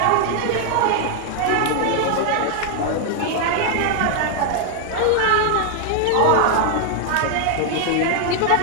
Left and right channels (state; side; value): different; both; correlation 0.00